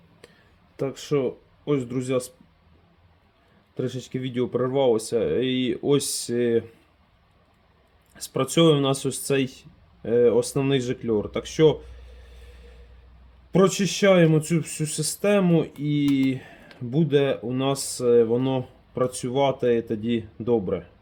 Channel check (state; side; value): identical; both; correlation 1.00